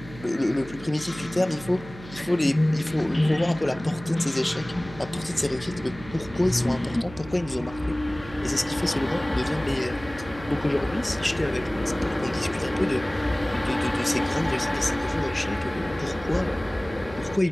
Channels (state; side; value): noise; right; hum, 16 dB below the sound